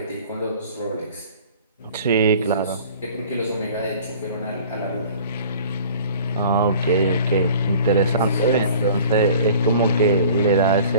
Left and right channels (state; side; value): inverted; both; correlation -0.47